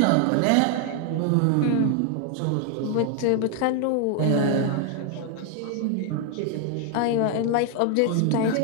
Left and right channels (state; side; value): different; both; correlation 0.00